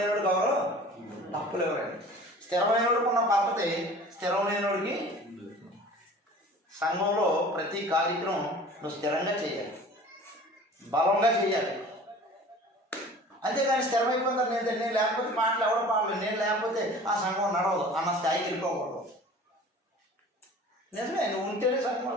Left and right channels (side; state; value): both; normal; correlation 0.44